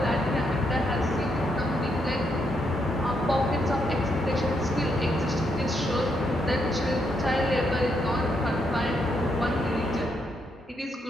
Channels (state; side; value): normal; both; correlation 0.78